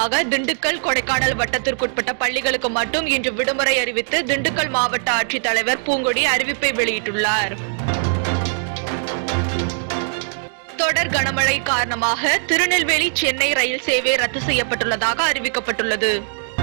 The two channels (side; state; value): left; silent; digital silence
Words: திண்டுக்கல், கொடைக்கானல் வட்டத்திற்குட்பட்ட பள்ளிகளுக்கு மட்டும் இன்று விடுமுறை அறிவித்து திண்டுக்கல் மாவட்ட ஆட்சித்தலைவர் பூங்கொடி அறிவிப்பை வெளியிட்டுள்ளார். தொடர் கனமழை காரணமாக திருநெல்வேலி, சென்னை ரயில் சேவை ரத்து செய்யப்பட்டுள்ளதாக அறிவிக்கப்பட்டுள்ளது.